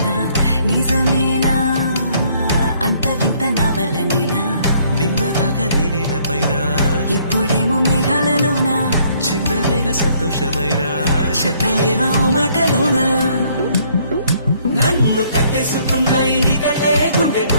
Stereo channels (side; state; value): both; inverted; correlation -0.64